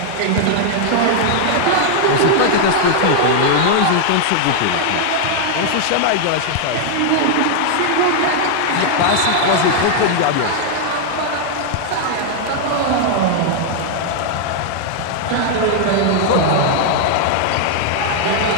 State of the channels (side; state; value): both; different; correlation 0.00